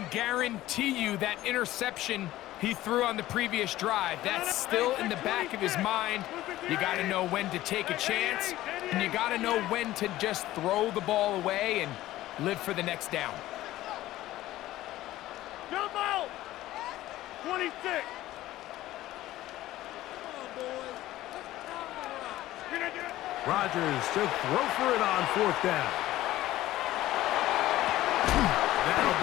guarantee you that interception he threw on the previous drive, that's still in the back of his mind. You got to know when to take a chance, and you got to know when to just throw the ball away and live for the next down. Jump out! 26. Rodgers to throw for it on fourth down. That'll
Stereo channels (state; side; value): quieter; right; 15.4 dB